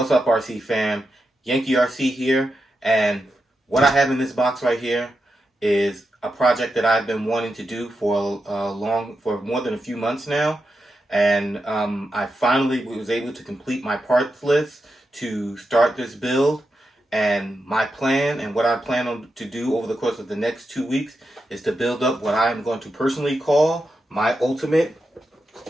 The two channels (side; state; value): both; normal; correlation 0.87